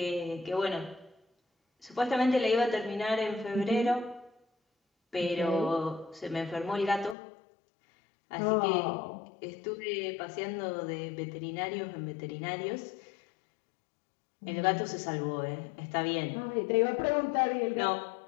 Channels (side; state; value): right; drops out; at 7.2 s